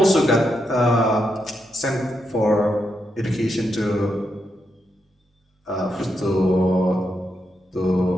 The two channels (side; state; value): both; normal; correlation 0.83